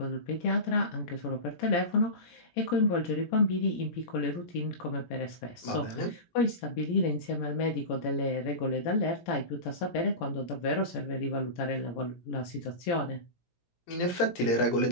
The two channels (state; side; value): late; right; 17 ms